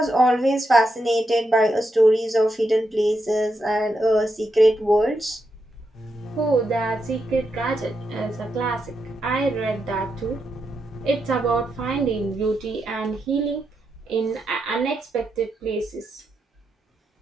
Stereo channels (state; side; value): normal; both; correlation 0.84